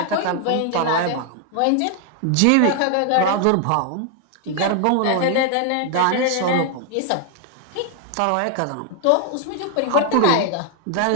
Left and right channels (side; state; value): both; different; correlation 0.00